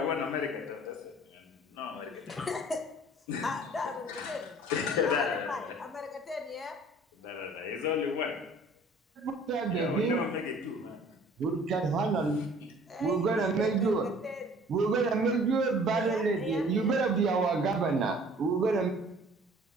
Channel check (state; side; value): normal; both; correlation 0.51